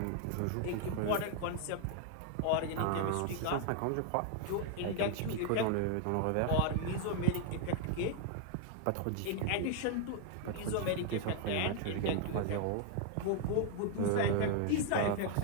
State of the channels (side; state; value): both; different; correlation 0.00